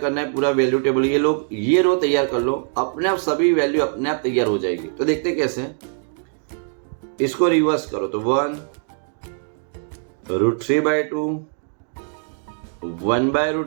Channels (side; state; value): left; silent; 58 dB below the other